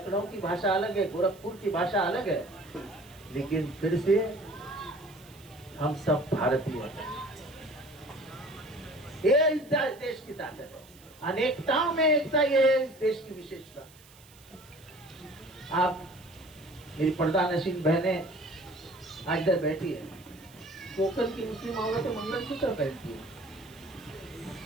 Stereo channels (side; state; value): right; noise; hiss, 24 dB below the sound